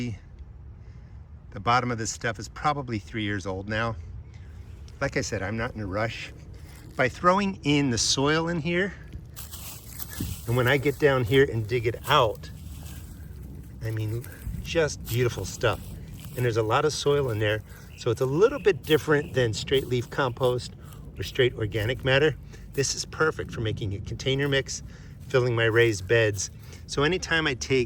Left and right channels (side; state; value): both; identical; correlation 1.00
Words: the bottom of this stuff is probably 3 years old now. Like I said, I'm not in a rush. By throwing in the soil in here, and when I get down here and dig it out, I mean, just beautiful stuff. And there's a lot of soil in there, so it's a little bit different than straight leaf compost or straight organic matter. This is perfect for making a container mix, filling my raised beds. So anytime I